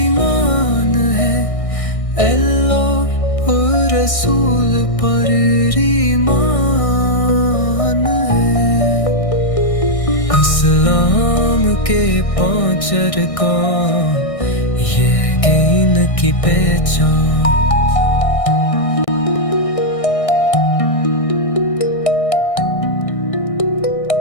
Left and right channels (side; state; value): right; late; 1.6 ms